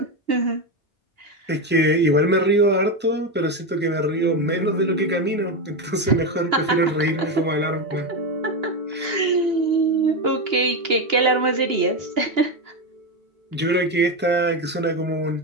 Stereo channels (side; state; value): both; normal; correlation 0.12